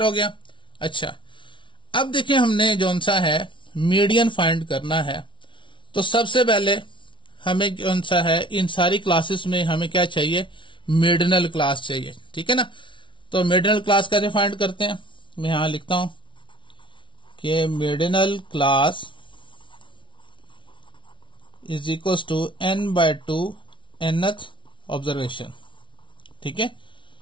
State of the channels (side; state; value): right; late; 0.24 ms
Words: हो गया? अच्छा, अब देखिए हमने जौन सा है मीडियन फाइंड करना है। तो सबसे पहले हमें कौन सा है, इन सारी क्लासेस में हमें क्या चाहिए? मिडनल क्लास चाहिए। ठीक है ना। तो मिडनल क्लास कैसे फाइंड करते हैं? मैं यहां लिखता हूं कि मिडनल class is equal to n/2 nth observation. ठीक है